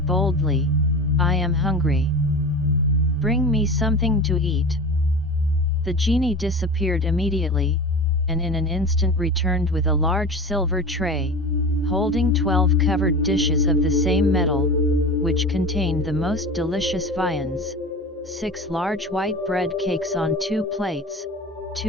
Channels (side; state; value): both; normal; correlation 0.32